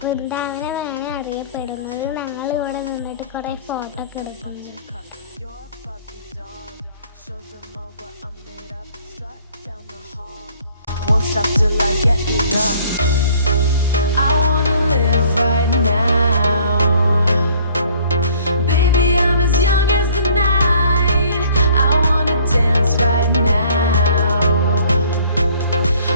വൃന്ദാവനമാണ് അറിയപ്പെടുന്നത്. ഞങ്ങൾ ഇവിടെ നിന്നിട്ട് കുറേ ഫോട്ടോ ഒക്കെ എടുക്കുന്നു. Won't stop till I get enough. I wanna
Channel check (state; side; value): inverted; both; correlation -0.57